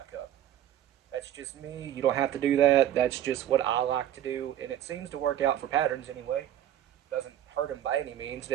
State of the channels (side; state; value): left; quieter; 11.6 dB